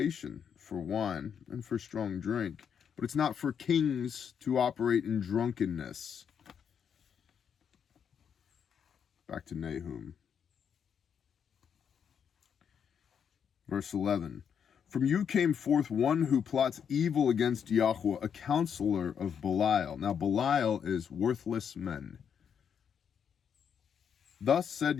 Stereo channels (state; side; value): quieter; right; 7.6 dB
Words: for wine and for strong drink, but it's not for kings to operate in drunkenness. Back to Nahum. Verse 11. From you came forth one who plots evil against Yahweh, a counselor of Belial. Now Belial is worthless men. Thus said